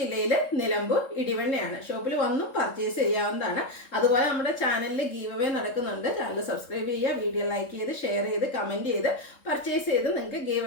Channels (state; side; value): late; right; 3.7 ms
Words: നിലമ്പൂർ ഇടിവണ്ണയാണ്. ഷോപ്പിൽ വന്നും പർച്ചേസ് ചെയ്യാവുന്നതാണ്. അതുപോലെ നമ്മുടെ ചാനലിൽ ഗീവ് അവേ നടക്കുന്നുണ്ട്. ചാനൽ സബ്സ്ക്രൈബ് ചെയ്യുക, വീഡിയോ ലൈക്ക് ചെയ്ത് ഷെയർ ചെയ്ത് കമൻറ്റ് ചെയ്ത് പർച്ചേസ് ചെയ്ത് നിങ്ങൾക്ക് ഗീവ്